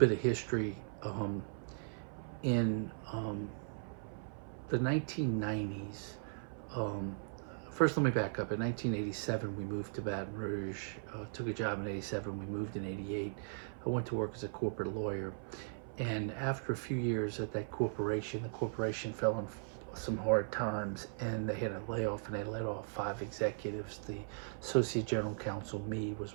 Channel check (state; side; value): silent; left; 52 dB below the other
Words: of history. In the 1990s, first let me back up. In 1987, we moved to Baton Rouge, took a job in 87, we moved in 88. I went to work as a corporate lawyer. And after a few years at that corporation, the corporation fell in some hard times and they had a layoff, and they let off 5 executives. The associate general counsel, me, was